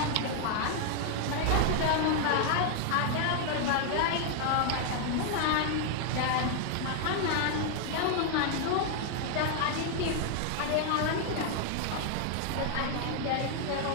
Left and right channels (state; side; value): different; both; correlation 0.00